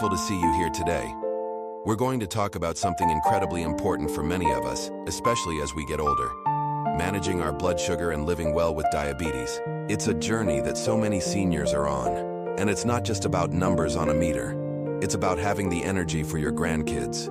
to see you here today. We're going to talk about something incredibly important for many of us, especially as we get older. Managing our blood sugar and living well with diabetes. It's a journey that so many seniors are on. And it's not just about numbers on a meter. It's about having the energy for your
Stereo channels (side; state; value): both; identical; correlation 1.00